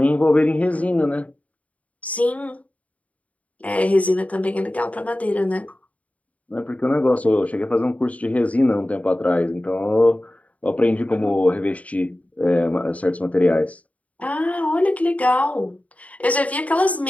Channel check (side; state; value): right; late; 0.069 ms